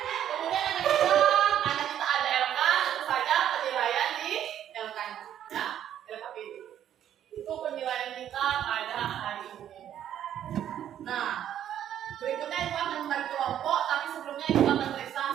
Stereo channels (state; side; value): quieter; left; 10.5 dB